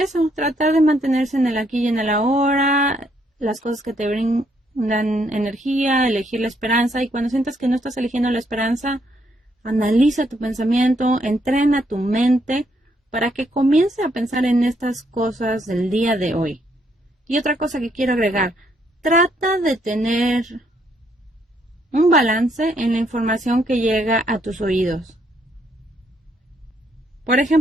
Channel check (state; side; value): normal; both; correlation 0.72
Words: eso, tratar de mantenerse en el aquí y en el ahora, las cosas que te brindan energía, elegir la esperanza, y cuando sientas que no estás eligiendo la esperanza, analiza tu pensamiento, entrena tu mente para que comience a pensar en estas cosas del día de hoy. Y otra cosa que quiero agregar, trata de tener un balance en la información que llega a tus oídos. Por